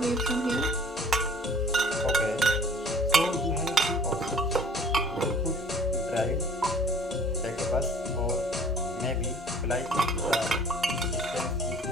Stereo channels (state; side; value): normal; both; correlation 0.51